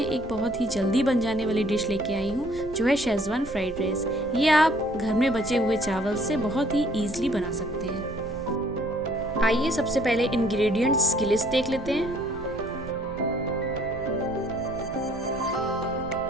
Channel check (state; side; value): noise; right; rumble, 16 dB below the sound